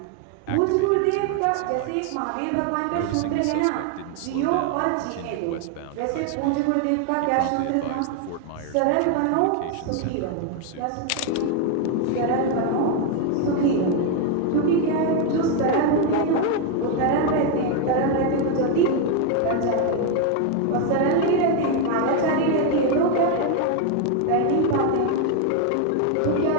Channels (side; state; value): both; different; correlation 0.01